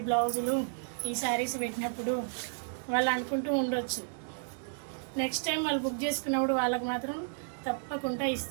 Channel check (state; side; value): silent; left; digital silence